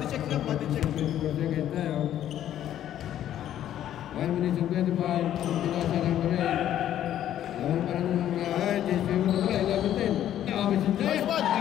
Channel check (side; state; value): right; quieter; 11.4 dB